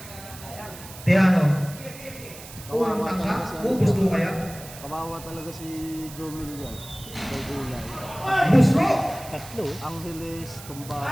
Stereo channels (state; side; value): noise; right; hiss, 16 dB below the sound